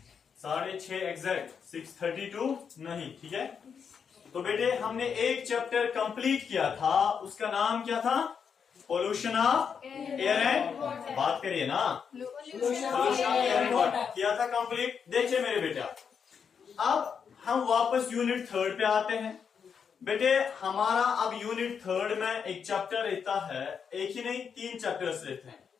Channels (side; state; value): right; quieter; 6.7 dB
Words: 6:30 एग्जैक्ट, 6:32 नहीं, ठीक है? तो बेटे हमने एक चैप्टर कंप्लीट किया था, उसका नाम क्या था? पोल्यूशन ऑफ एयर एंड, बात करिए ना, pollution of air and water किया था कंप्लीट। देखिए मेरे बेटा, अब हम वापस यूनिट 3 पे आते हैं। बेटे हमारा अब यूनिट 3 में एक चैप्टर रहता है, एक ही नहीं 3 चैप्टर्स रहते हैं।